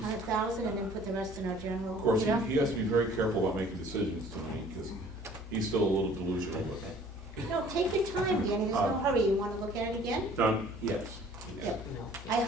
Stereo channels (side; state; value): both; normal; correlation 0.53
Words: and then put the rest in our general? Of course, Yeah. he has to be very careful about making decisions tonight, because he's still a little delusional with it. No, take your time, Danny, there's no hurry. You want to look at it again? Done? Yes. Yep. I